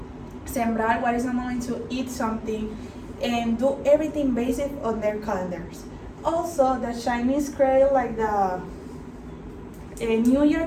sembrar, what is the moment to eat something, and do everything based on their calendars. Also, the Chinese create like the New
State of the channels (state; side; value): identical; both; correlation 1.00